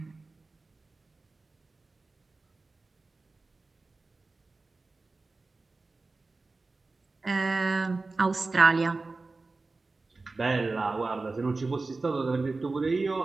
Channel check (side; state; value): left; quieter; 3.6 dB